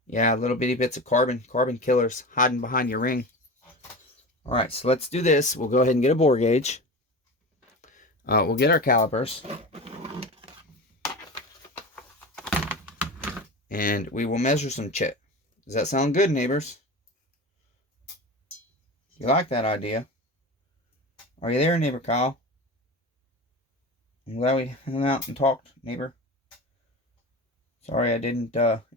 Yeah, little bitty bits of carbon killers hiding behind your ring. Alright, so let's do this. We'll go ahead and get a bore gauge. We'll get our calipers. And we will measure some CHIT. Does that sound good, neighbors? You like that idea? Are you there, neighbor Kyle? I'm glad we hung out and talked, neighbor. Sorry I didn't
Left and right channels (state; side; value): normal; both; correlation 0.30